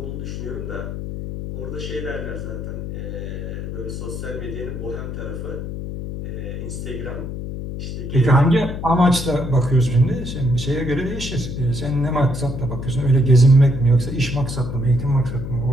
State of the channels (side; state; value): left; noise; hum, 6 dB below the sound